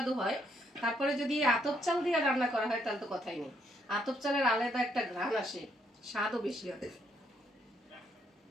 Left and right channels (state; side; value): normal; both; correlation 0.73